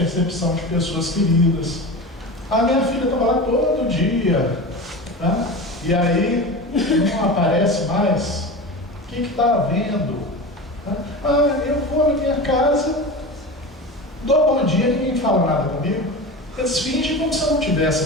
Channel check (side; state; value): both; normal; correlation 0.28